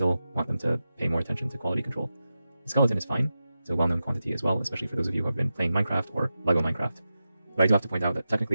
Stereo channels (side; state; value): both; inverted; correlation -0.91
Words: want them to pay more attention to quality control. The skeleton is fine. It's a well-known quantity as well, especially for those of you who have been playing Minecraft or LEGO Minecraft. But I do have to point out that